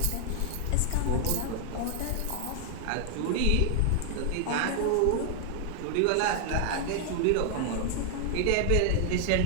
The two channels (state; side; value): different; both; correlation 0.00